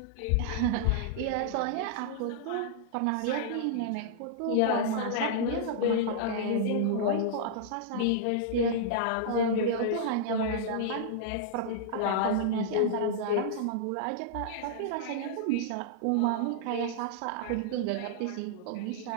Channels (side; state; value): both; different; correlation -0.02